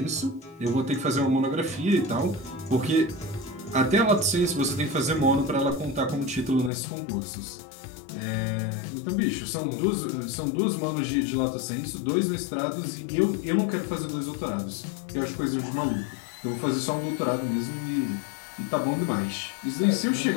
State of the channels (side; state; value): right; drops out; at 6.7 s